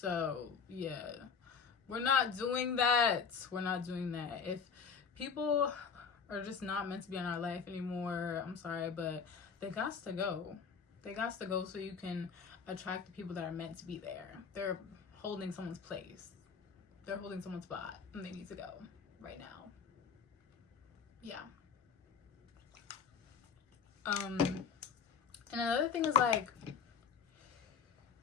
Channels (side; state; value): right; quieter; 6.0 dB